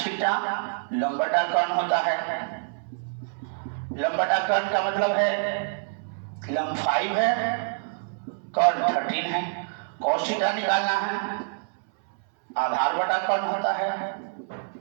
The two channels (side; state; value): left; silent; 61 dB below the other